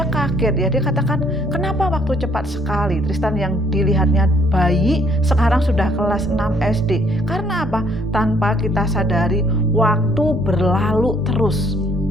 kaget ya. Dia katakan, kenapa waktu cepat sekali? Tristan yang dilihatnya bayi sekarang sudah kelas 6 SD. Karena apa? Tanpa kita sadari waktu berlalu terus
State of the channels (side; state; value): both; normal; correlation 0.64